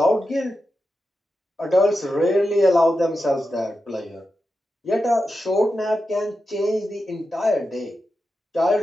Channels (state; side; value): normal; both; correlation 0.89